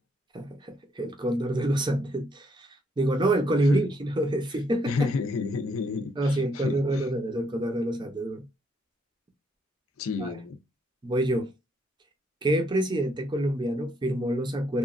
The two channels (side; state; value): both; normal; correlation 0.72